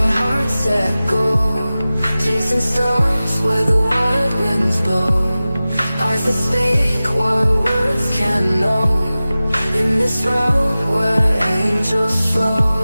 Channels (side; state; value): both; inverted; correlation -0.96